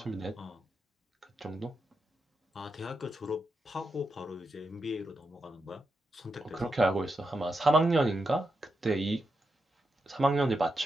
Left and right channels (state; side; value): normal; both; correlation 0.86